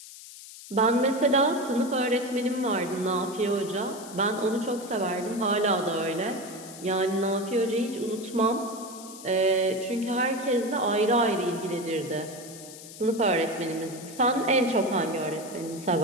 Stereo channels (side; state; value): left; noise; hiss, 15 dB below the sound